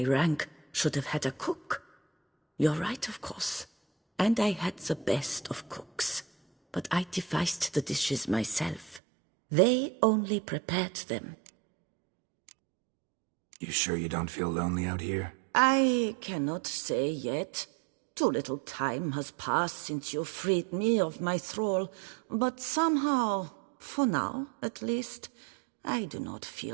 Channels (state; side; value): drops out; left; at 9.0 s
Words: rank should have had a cook? You're right, of course. And I had the best of cooks. But I devised the dishes myself. They only prepared them. You sure you don't feel lonely out here? I cannot say yet. Too little time has passed since you freed me of my thrall, but somehow, for now at least, I do not